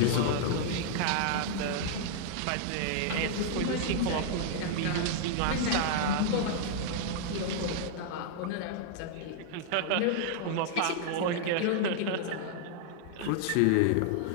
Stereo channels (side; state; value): both; different; correlation -0.01